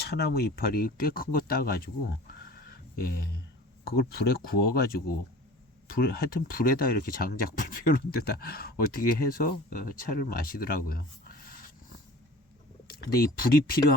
이파리 꽤 큰 거 따가지고 그걸 불에 구워가지고 하여튼 불에다 이렇게 장작 불 피우는 데다 어떻게 해서 차를 마시더라고요. 근데 이 불이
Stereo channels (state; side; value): normal; both; correlation 0.42